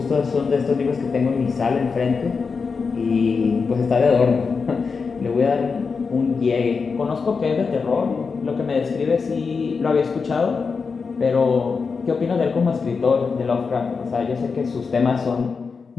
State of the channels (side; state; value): right; quieter; 5.1 dB